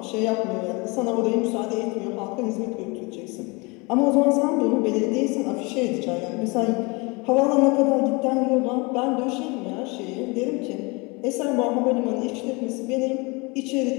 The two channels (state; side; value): quieter; right; 27.7 dB